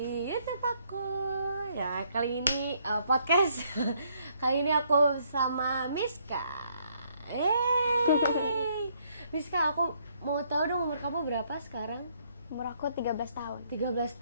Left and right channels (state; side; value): inverted; both; correlation -0.69